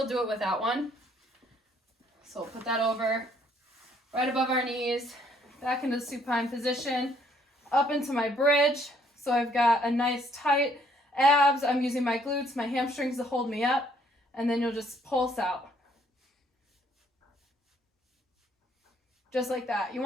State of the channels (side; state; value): both; normal; correlation 0.65